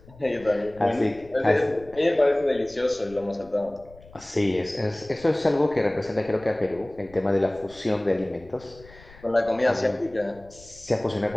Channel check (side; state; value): left; noise; rumble, 23 dB below the sound